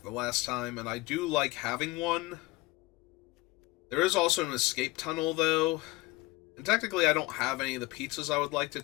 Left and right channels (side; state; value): right; quieter; 20.9 dB